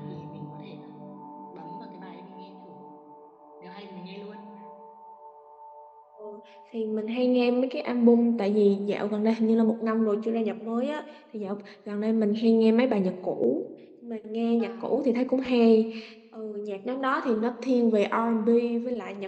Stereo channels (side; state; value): both; identical; correlation 1.00